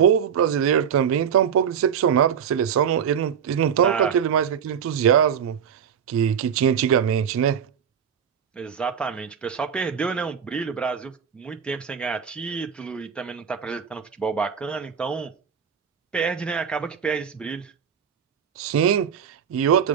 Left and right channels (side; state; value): left; quieter; 7.8 dB